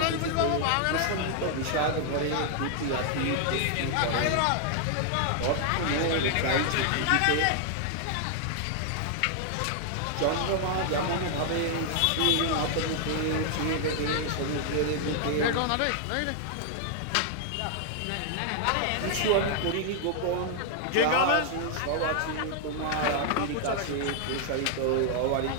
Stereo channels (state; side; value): different; both; correlation 0.00